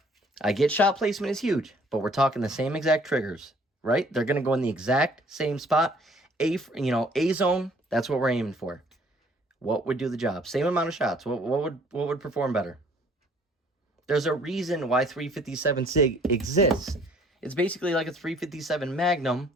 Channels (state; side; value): normal; both; correlation 0.58